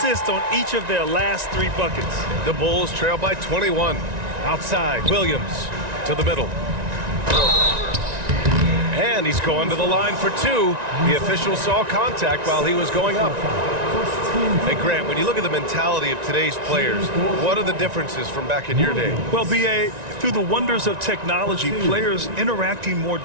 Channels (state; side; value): late; left; 1.9 ms